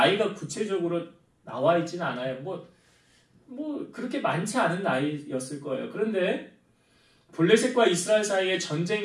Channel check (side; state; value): both; identical; correlation 1.00